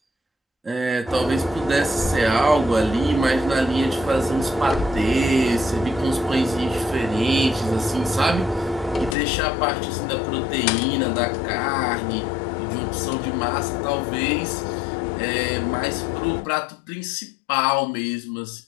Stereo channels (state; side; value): drops out; right; at 9.2 s